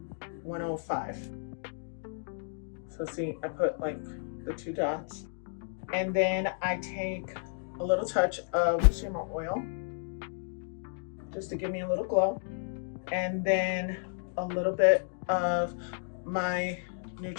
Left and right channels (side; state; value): right; silent; digital silence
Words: 105. So see, I put like the 2 dots. And then I take a little touch of shimmer oil just to give me a little glow. And then a little bit of my